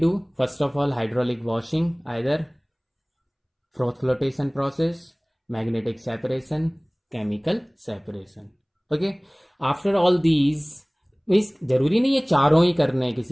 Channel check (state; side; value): identical; both; correlation 1.00